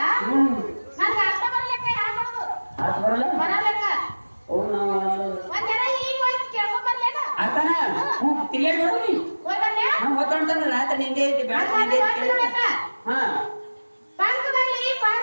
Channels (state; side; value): inverted; both; correlation -1.00